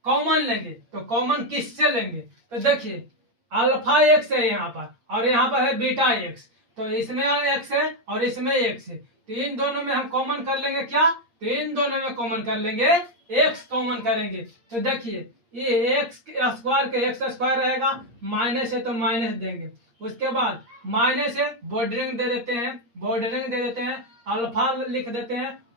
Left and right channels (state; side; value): late; left; 8.6 ms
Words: कॉमन लेंगे, तो कॉमन किससे लेंगे, तो देखिए अल्फा एक्स है यहाँ पर और यहाँ पर है बीटा एक्स, तो इसमें एक्स है और इसमें एक्स है, तो इन दोनों में हम कॉमन कर लेंगे क्या, तो इन दोनों में कॉमन कर लेंगे एक्स कॉमन करेंगे। तो देखिए ये एक्स स्क्वायर के एक्स स्क्वायर रहेगा, माइनस है तो माइनस देंगे। उसके बाद माइनस है बॉर्डरिंग दे देते हैं, बॉर्डरिंग दे देते हैं, अल्फा लिख देते हैं